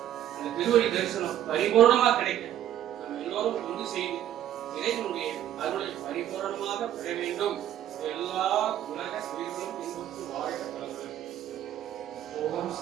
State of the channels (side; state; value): left; quieter; 11.5 dB